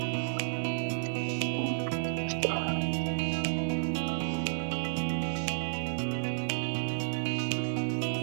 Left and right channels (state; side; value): silent; left; digital silence